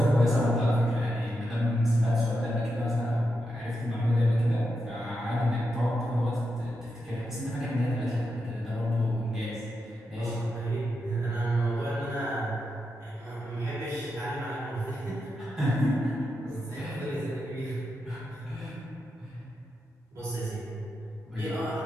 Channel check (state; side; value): normal; both; correlation 0.86